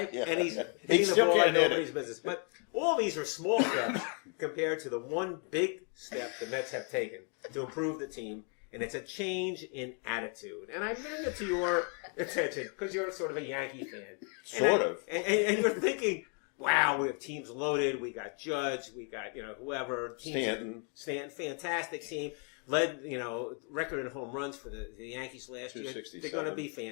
Yeah. and he's He hitting the still ball like can't hit nobody's it. business. But all these are small steps compared to the one big step the Mets have taken to improve the team, and it's a change in attitude. And I bring it to your attention because you're sort of a Yankee fan. Sort of. And you're thinking, wow, we have teams loaded. We got Judge. We got, whoever. Stanton, fantastic team. Led, record in home runs for the Yankees last year. 267. They're going to be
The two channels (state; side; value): quieter; right; 39.7 dB